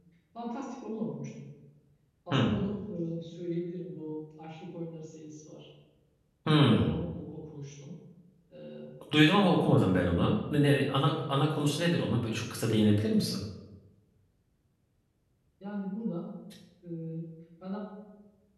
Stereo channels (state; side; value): identical; both; correlation 1.00